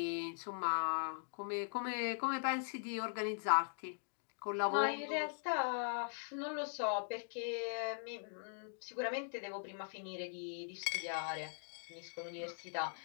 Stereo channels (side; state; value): right; silent; digital silence